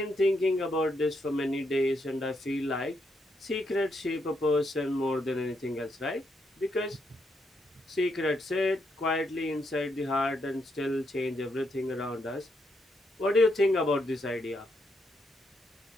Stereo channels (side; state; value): both; normal; correlation 0.78